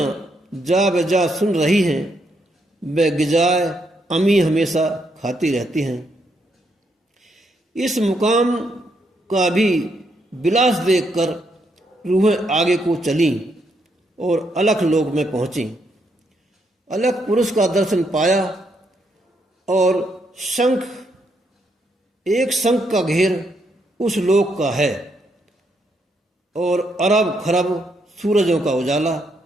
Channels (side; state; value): both; normal; correlation 0.77